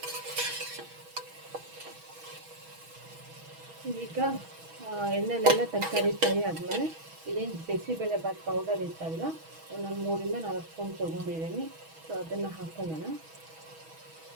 ಈಗ ಎಣ್ಣೆಲೆಲ್ಲ ತರಕಾರಿ ಫ್ರೈ ಆದಮೇಲೆ ಇದೇನು ಬಿಸಿಬೇಳೆಬಾತ್ ಪೌಡರ್ ಇತ್ತಲ್ಲ ನಾನು 3-4 ಸ್ಪೂನ್ ತೊಗೊಂಡಿದ್ದೀನಿ. ಸೊ ಅದನ್ನು ಹಾಕೊಳ್ಳೋಣ.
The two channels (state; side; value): late; left; 6.2 ms